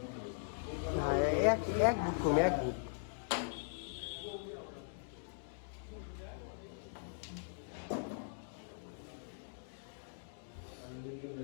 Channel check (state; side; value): silent; right; digital silence